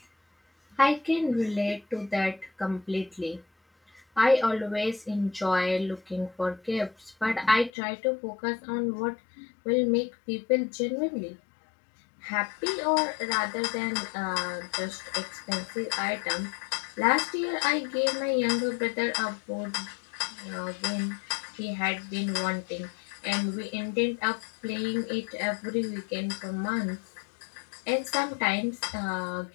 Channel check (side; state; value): right; drops out; at 7.7 s